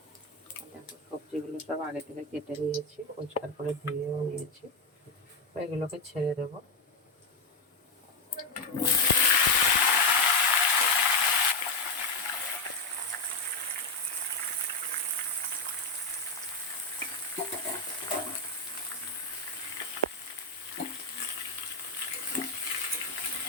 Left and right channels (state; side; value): quieter; right; 3.4 dB